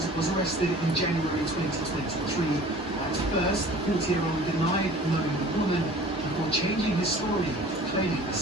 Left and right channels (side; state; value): both; normal; correlation 0.46